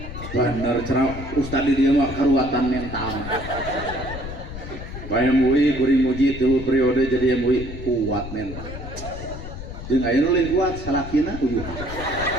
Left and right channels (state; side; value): noise; left; rumble, 9 dB below the sound